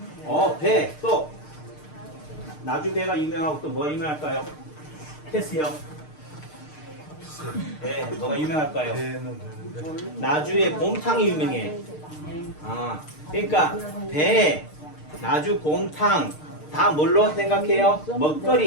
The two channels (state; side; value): late; right; 6.6 ms